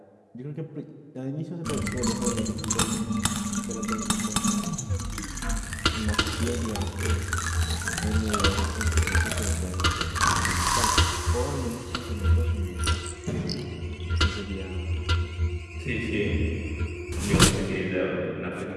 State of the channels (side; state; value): both; identical; correlation 1.00